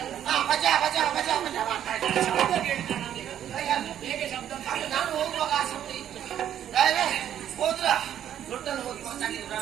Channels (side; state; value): left; quieter; 10.4 dB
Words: ಮಜಾ ಮಜಾ ಮಜಾ ಮಜಾ ಮಾಡ್ತಾ ಇದ್ದಾಳೆ. ಶಬ್ದ ಕೇಳ್ತಾನೆ. ಹೇಗೆ ಶಬ್ದ? ನಾನು ಹೋಗುವಾಗ ಆ ಶಬ್ದ ಇತ್ತು.